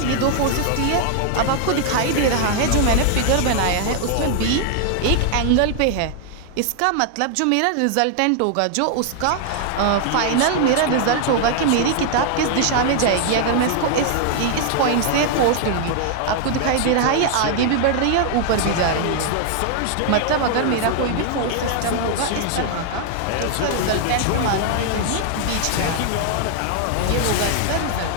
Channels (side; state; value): both; different; correlation 0.00